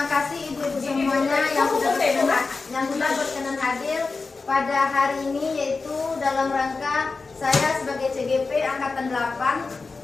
kasih ibu-ibu semuanya yang sudah berkenan hadir pada hari ini, yaitu dalam rangka saya sebagai CGP Angkatan 8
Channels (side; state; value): right; quieter; 4.1 dB